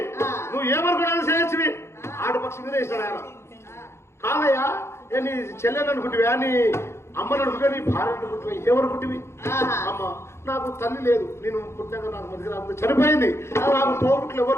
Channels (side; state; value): right; late; 0.13 ms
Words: నువ్వు ఏమనుకున్నాను చేయొచ్చువి ఆడపక్షి మీద ఇస్తాడు ఆయన. కాదయ్యా నీ చెల్లెని అనుకుంటువా, నీ అమ్మని అనుకుంటా, నీ భార్య అనుకుంటువా, ఏమనుకుంటువి? అమ్మ నాకు తల్లి లేదు, నేను పుట్టినాక నాకు మధ్య చనిపోయింది, నాకు తోబుట్లు ఎవరు